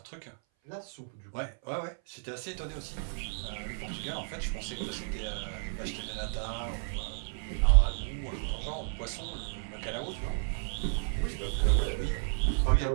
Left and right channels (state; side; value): silent; left; 56 dB below the other